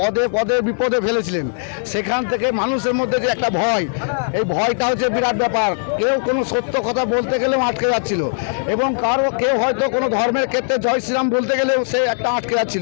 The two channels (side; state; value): right; silent; digital silence